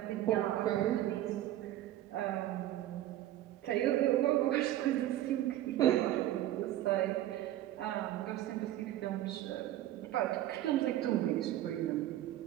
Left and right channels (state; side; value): quieter; left; 13.7 dB